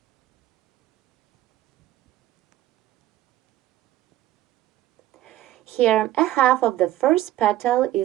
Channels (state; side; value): quieter; left; 14.4 dB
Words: Here, a half of the first petal